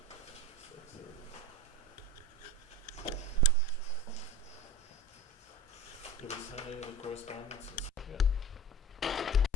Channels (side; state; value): both; normal; correlation 0.33